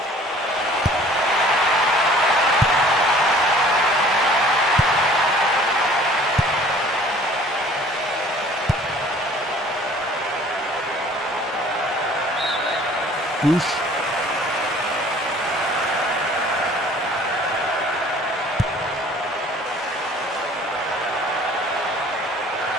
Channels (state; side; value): normal; both; correlation 0.51